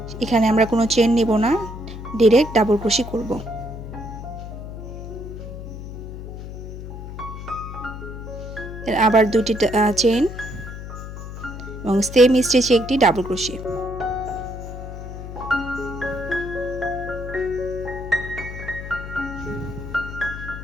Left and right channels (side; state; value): left; noise; hum, 10 dB below the sound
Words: এখানে আমরা কোনো চেন নিব না, ডাইরেক্ট ডাবল ক্রোশি করব। আবার 2টি চেন এবং সেম স্টিচে একটি ডাবল ক্রোশি।